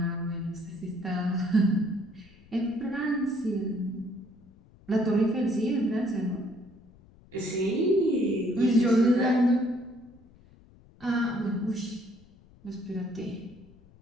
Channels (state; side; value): noise; left; rumble, 26 dB below the sound